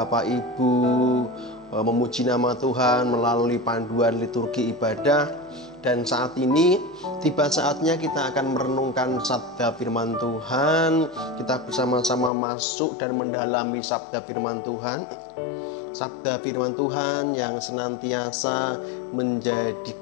Ibu memuji nama Tuhan melalui panduan liturgi ibadah. Dan saat ini tiba saatnya kita akan merenungkan sabda firman Tuhan. Kita bersama-sama masuk dan mendalami sabda firman Tuhan. Sabda firman Tuhan yang senantiasa menjadi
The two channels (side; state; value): right; drops out; at 12.3 s